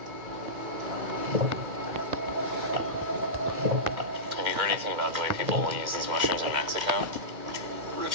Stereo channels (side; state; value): left; late; 2.1 ms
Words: Have you heard anything about the way people will use these mushrooms in Mexico? Rich